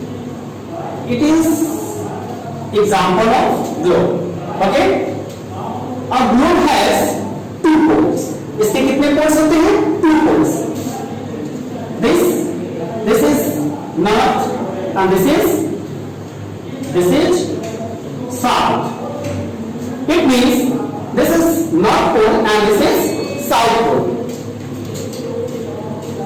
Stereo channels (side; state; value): both; identical; correlation 1.00